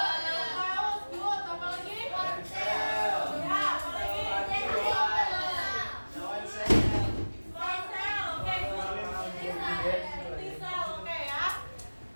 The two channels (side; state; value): both; inverted; correlation -1.00